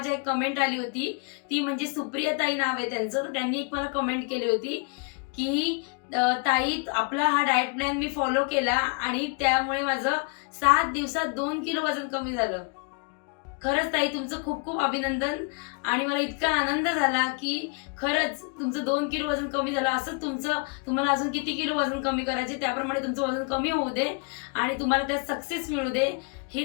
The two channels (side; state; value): right; quieter; 33.0 dB